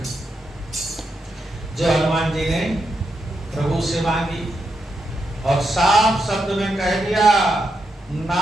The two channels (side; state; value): both; normal; correlation 0.84